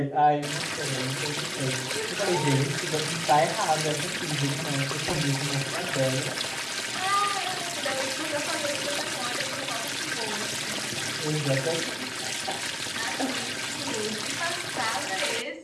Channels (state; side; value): identical; both; correlation 1.00